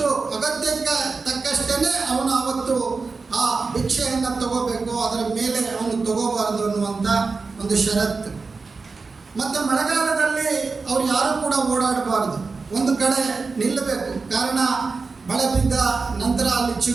ತಕ್ಕಷ್ಟೇ ಅವನು ಅವತ್ತು ಆ ಭಿಕ್ಷೆಯನ್ನು ತಗೋಬೇಕು, ಅದರ ಮೇಲೆ ಅವನು ತಗೋಬಾರದು ಅನ್ನುವಂಥ ಒಂದು ಷರತ್ತು. ಮತ್ತು ಮಳೆಗಾಲದಲ್ಲಿ ಅವ್ರು ಯಾರೂ ಕೂಡ ಓಡಾಡಬಾರ್ದು, ಒಂದು ಕಡೆ ನಿಲ್ಲಬೇಕು. ಕಾರಣ ಮಳೆ ಬಿದ್ದ ನಂತರ ಅಲ್ಲಿ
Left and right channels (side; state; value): left; quieter; 4.3 dB